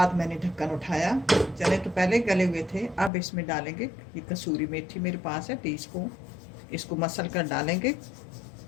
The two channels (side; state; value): right; drops out; at 3.1 s